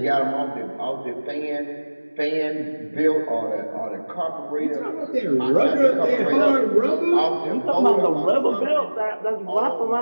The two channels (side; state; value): both; inverted; correlation -1.00